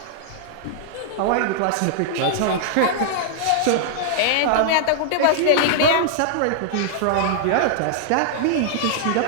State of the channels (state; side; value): different; both; correlation -0.01